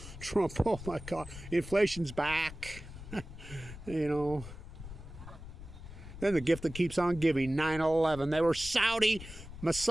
Trump, oh my God, inflation's back. You know. Then the gift that keeps on giving, 9/11. They were Saudi,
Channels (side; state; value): left; noise; rumble, 13 dB below the sound